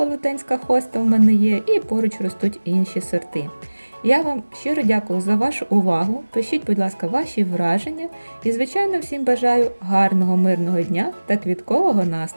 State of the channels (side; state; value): both; inverted; correlation -1.00